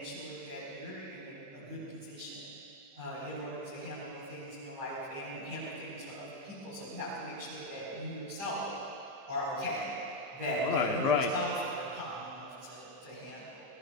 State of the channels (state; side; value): late; left; 15 ms